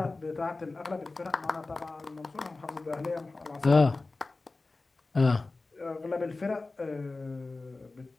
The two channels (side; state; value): right; quieter; 3.4 dB